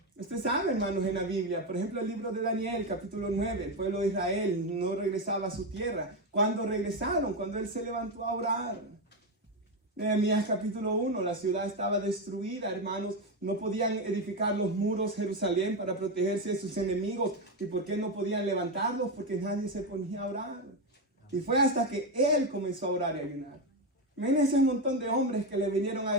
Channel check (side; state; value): both; normal; correlation 0.11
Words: Usted sabe, hermanos, en la Biblia, por ejemplo, el libro de Daniel, capítulo 9, el pueblo de Israel no regresaba a su tierra. ¿Cuándo regresaron? Cuando él se levantó a orar. Nehemías capítulo 1, la ciudad estaba destruida, hermanos, no podían edificar los muros de Jerusalén para protegerse de sus enemigos. ¿Y por qué no podían levantarlos? Porque nadie se ponía a orar. Y fue hasta que él comenzó a orar y a ayunar. Imagínense un montón de hombres que le vinieron a